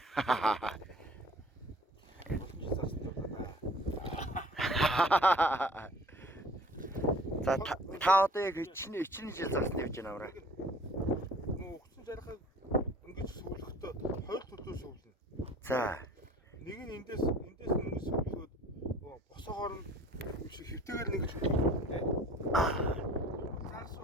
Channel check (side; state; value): both; normal; correlation 0.49